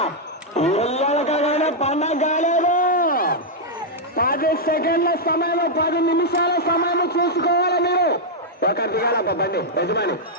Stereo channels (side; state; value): both; normal; correlation -0.04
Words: ఎల్లకగానే పండగ కాలేదు. 10 సెకండ్ల సమయం, 10 నిమిషాల సమయం చూసుకోవాలి మీరు. ఒక దిగాల బండి యజమాని